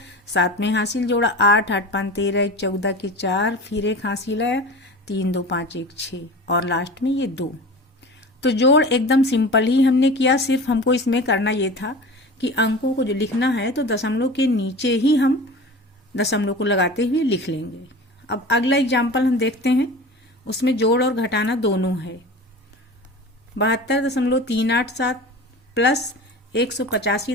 7 में हासिल जोड़ा 8 8 5 13 1 14 के 4, फिर 1 हासिल आया 3 2 5 1 6 और लास्ट में ये 2। तो जोड़ एकदम सिंपल ही हमने किया, सिर्फ हमको इसमें करना ये था कि अंकों को जो लिखना है तो दशमलव के नीचे ही हम दशमलव को लगाते हुए लिख लेंगे। अब अगला एग्जाम्पल हम देखते हैं, उसमें जोड़ और घटाना दोनों है। 72.387 प्लस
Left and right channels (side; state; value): both; normal; correlation 0.35